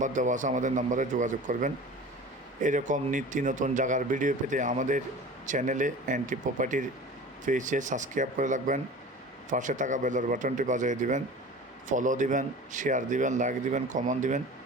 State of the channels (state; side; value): normal; both; correlation 0.38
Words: দেওয়া আছে আমাদের নাম্বারে যোগাযোগ করবেন। এরকম নিত্য নতুন জায়গার ভিডিও পেতে আমাদের চ্যানেলে এনটি প্রপার্টির পেজে সাবস্ক্রাইব করে রাখবেন। পাশে থাকা বেলের বাটনটি বাজিয়ে দিবেন, ফলো দিবেন, শেয়ার দিবেন, লাইক দিবেন, কমেন্ট দিবেন।